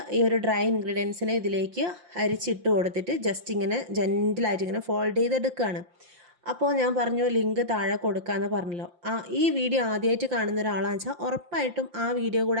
ഈ ഒരു ഡ്രൈ ഇൻഗ്രീഡിയൻസിനെ ഇതിലേക്ക് അരിച്ചിട്ട് കൊടുത്തിട്ട് ജസ്റ്റ് ഇങ്ങനെ ജെൻറ്റിലായിട്ട് ഇങ്ങനെ ഫോൾഡ് ചെയ്തെടുക്കുകയാണ്. അപ്പോൾ ഞാൻ പറഞ്ഞു ലിങ്ക് താഴെ കൊടുക്കാമെന്ന് പറഞ്ഞല്ലോ. ഈ വീഡിയോ ആദ്യമായിട്ട് കാണുന്ന ഒരാളാണെന്ന് വെച്ചാൽ ഉറപ്പായിട്ടും ആ വീഡിയോ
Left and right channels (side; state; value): left; late; 5.7 ms